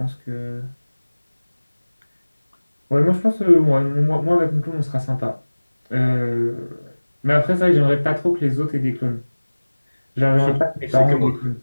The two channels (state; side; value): inverted; both; correlation -1.00